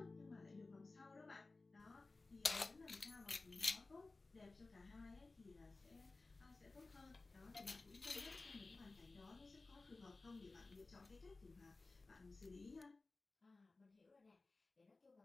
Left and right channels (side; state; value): right; quieter; 3.5 dB